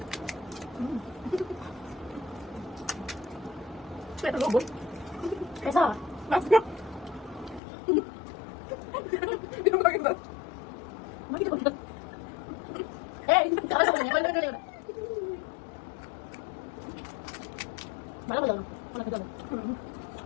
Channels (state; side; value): drops out; right; at 7.6 s